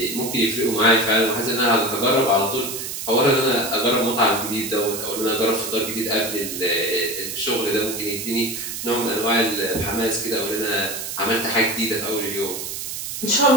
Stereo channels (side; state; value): right; noise; hiss, 6 dB below the sound